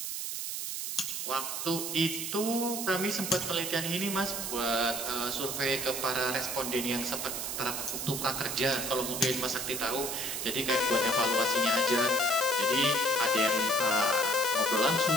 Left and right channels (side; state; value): right; noise; hiss, 3 dB below the sound